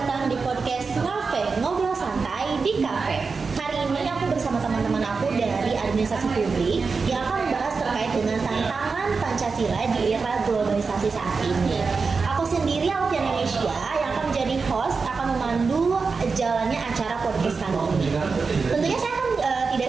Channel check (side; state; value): left; quieter; 4.7 dB